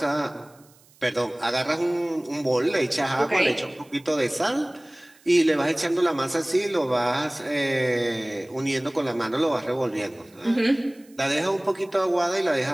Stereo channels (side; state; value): right; noise; hiss, 29 dB below the sound